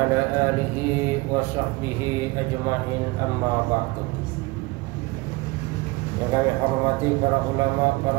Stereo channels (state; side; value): quieter; left; 22.9 dB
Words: alihi wa sahbihi ajma'in, amma ba'du. Yang kami hormati para ulama,